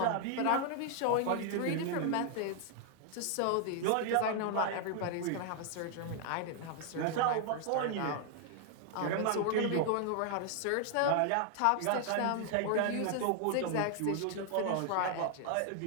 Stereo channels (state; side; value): different; both; correlation 0.00